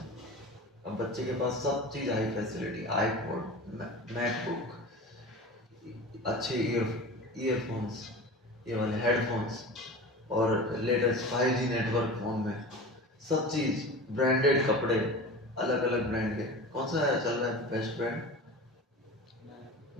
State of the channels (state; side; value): normal; both; correlation 0.33